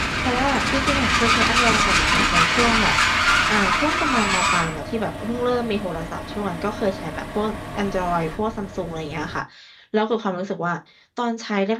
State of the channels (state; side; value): identical; both; correlation 1.00